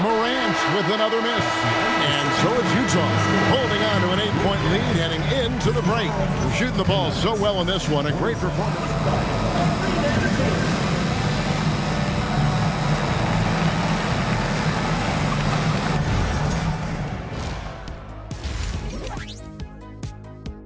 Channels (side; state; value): both; identical; correlation 1.00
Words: Morant with another miss. And so it's Utah holding on to an 8-point lead heading into the break. Shooting the ball so well in this one. A great performance.